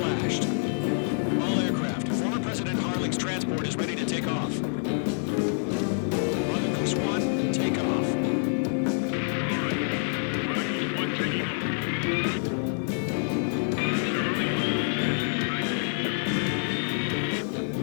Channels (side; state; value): right; silent; 58 dB below the other